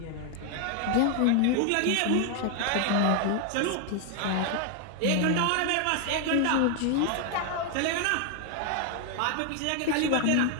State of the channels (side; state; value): both; different; correlation 0.01